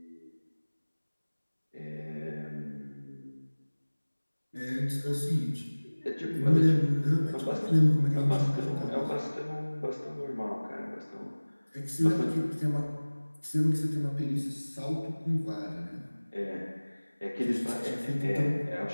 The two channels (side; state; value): both; inverted; correlation -1.00